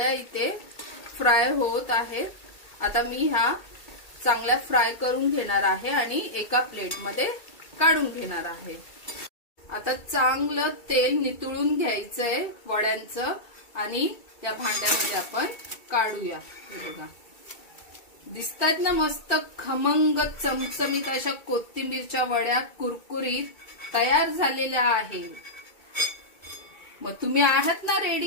इथे फ्राय होत आहेत. आता मी ह्या चांगल्या फ्राय करून घेणार आहे आणि एका प्लेटमध्ये काढून घेणार आहे. आता चांगलं तेल नितळून घ्यायचंय वड्यांचं आणि या भांड्यामध्ये आपण काढूया. हे बघा दिसतात ना मस्त खमंग चमचमीत अशा कोथिंबीरच्या वड्या कुरकुरीत तयार झालेल्या आहेत. मग तुम्ही आहात ना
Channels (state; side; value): late; right; 2.3 ms